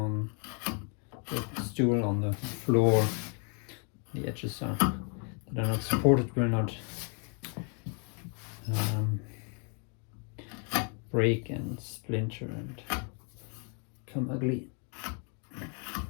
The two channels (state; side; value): quieter; right; 39.5 dB